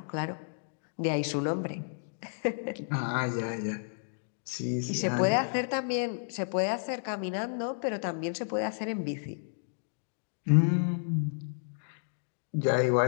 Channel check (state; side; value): silent; right; digital silence